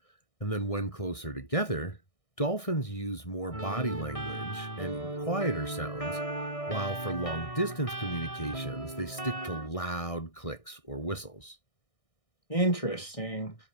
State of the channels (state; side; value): late; right; 1.6 ms